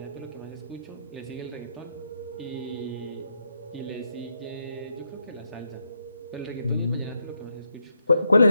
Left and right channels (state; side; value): inverted; both; correlation -0.81